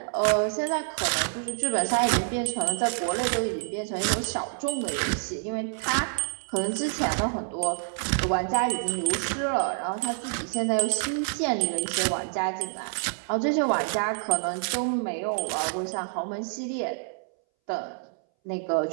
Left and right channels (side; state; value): left; silent; 60 dB below the other